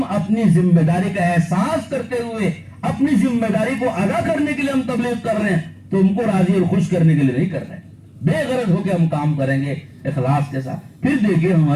اپنی ذمہ داری کا احساس کرتے ہوئے اپنی ذمہ داری کو ادا کرنے کے لیے ہم تبلیغ کر رہے ہیں، تم کو راضی اور خوش کرنے کے لیے نہیں کر رہے ہیں۔ بے غرض ہو کے ہم کام کریں گے اخلاص کے ساتھ، پھر دیکھیے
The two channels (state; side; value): identical; both; correlation 1.00